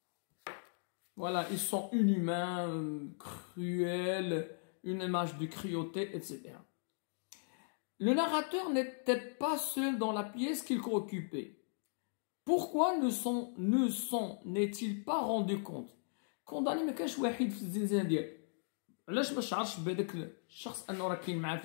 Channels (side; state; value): right; silent; digital silence